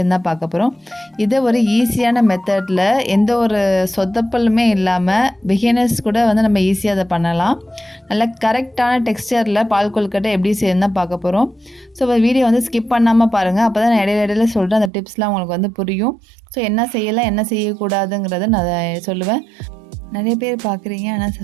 தான் பார்க்க போகிறோம். இதை ஒரு ஈஸியான மெத்தடில் எந்த ஒரு சொதப்பலுமே இல்லாமல் பிகினர்ஸ் கூட வந்து நம்ம ஈஸியாக அதை பண்ணலாம். நல்ல கரெக்டான டெக்ஸ்டரில் பால் கொழுக்கட்டை எப்படி செய்யணும் தான் பார்க்க போகிறோம். ஸோ வீடியோ வந்து ஸ்கிப் பண்ணாமல் பாருங்கள். அப்போ தான் நான் இடையில சொல்கிறேன், அந்த டிப்ஸ்லாம் உங்களுக்கு வந்து புரியும். ஸோ என்ன செய்யலாம் என்ன செய்யக்கூடாதுங்கிறத நான் சொல்லுவேன். நிறைய பேர் பார்க்குறீங்க, ஆனால்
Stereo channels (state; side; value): drops out; left; at 14.9 s